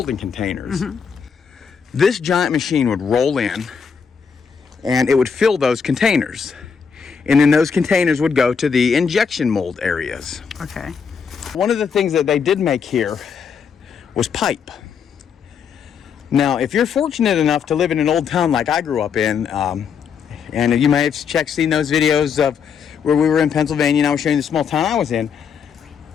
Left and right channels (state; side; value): quieter; right; 6.5 dB